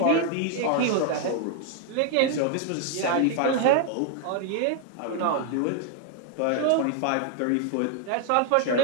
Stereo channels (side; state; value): both; different; correlation 0.00